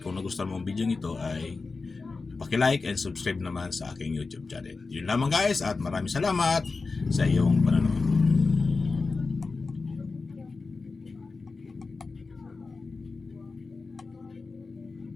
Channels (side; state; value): right; quieter; 4.1 dB